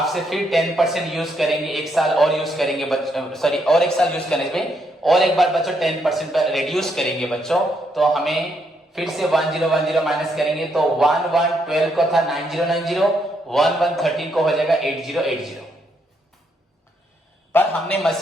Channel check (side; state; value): both; normal; correlation 0.75